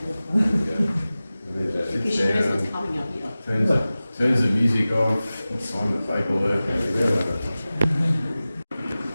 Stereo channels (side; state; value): both; inverted; correlation -0.97